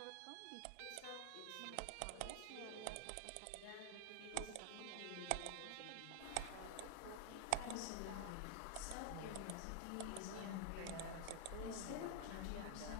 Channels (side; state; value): both; different; correlation 0.00